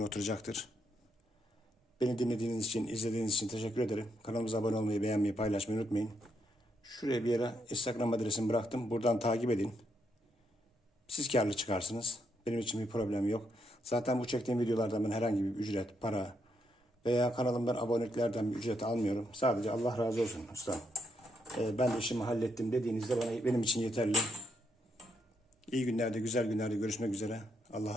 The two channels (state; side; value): normal; both; correlation 0.78